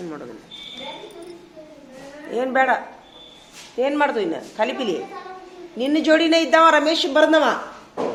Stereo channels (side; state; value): both; identical; correlation 1.00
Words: ಮಾಡೋದಿಲ್ಲ. ಏನು ಬೇಡ, ಏನು ಮಾಡ್ದು ಇನ್ನು ಕಲಿಪಿಲಿ. ನಿನ್ನ ಜೋಡಿನೇ ಇದ್ದವ ರಮೇಶ್ ಬರ್ದವ.